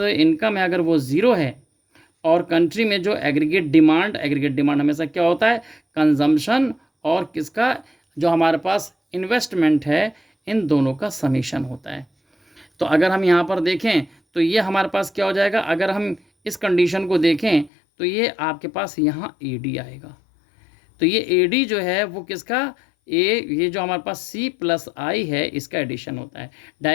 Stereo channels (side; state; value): right; drops out; at 17.7 s